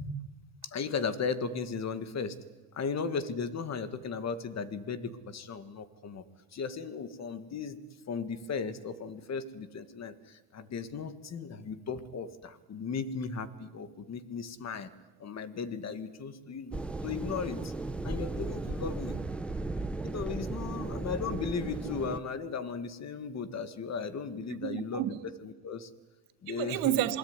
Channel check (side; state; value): both; normal; correlation 0.17